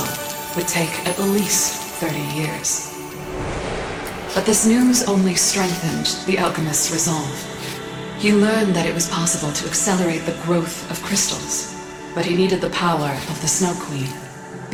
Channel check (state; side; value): identical; both; correlation 1.00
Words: would take at least 30 years. But this news only strengthened the alchemist's resolve. He learned that it was possible to accelerate the growth of crystals, but he needed the power of the Snow Queen,